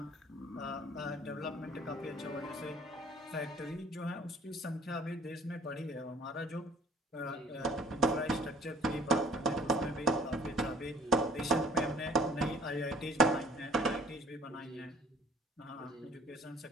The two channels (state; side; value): normal; both; correlation 0.52